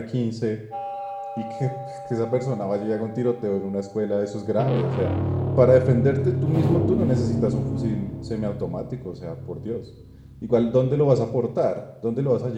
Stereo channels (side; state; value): both; identical; correlation 1.00